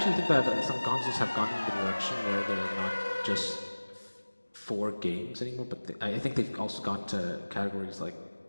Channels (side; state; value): both; inverted; correlation -1.00